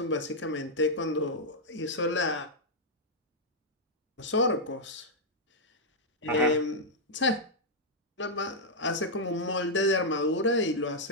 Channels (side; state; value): both; normal; correlation -0.04